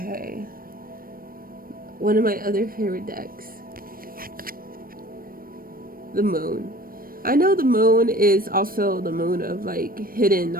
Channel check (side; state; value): left; late; 0.42 ms